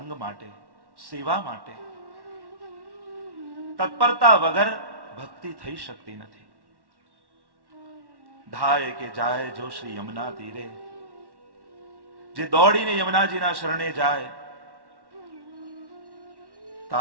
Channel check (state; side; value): late; left; 1.1 ms